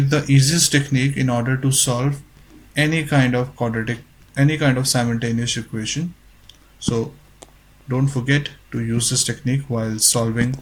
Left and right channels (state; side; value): identical; both; correlation 1.00